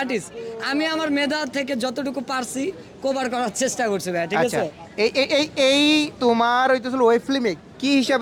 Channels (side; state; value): both; identical; correlation 1.00